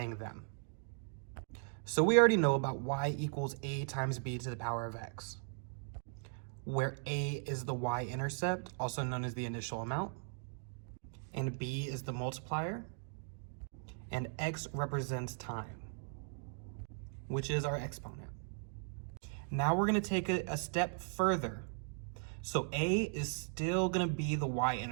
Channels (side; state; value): left; silent; 52 dB below the other